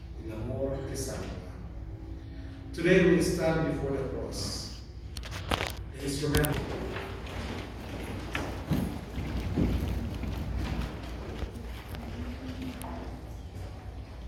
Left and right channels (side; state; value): both; identical; correlation 1.00